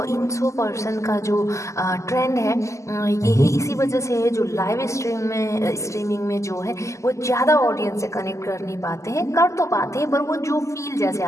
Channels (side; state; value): right; late; 0.15 ms